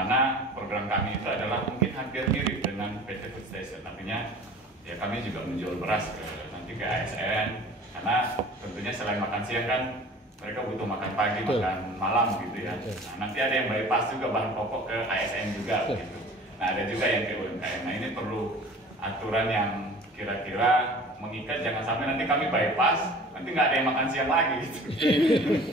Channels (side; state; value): both; normal; correlation 0.44